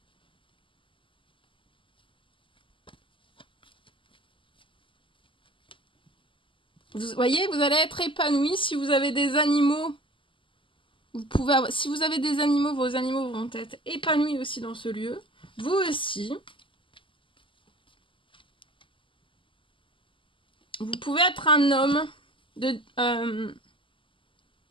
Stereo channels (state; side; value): late; right; 0.25 ms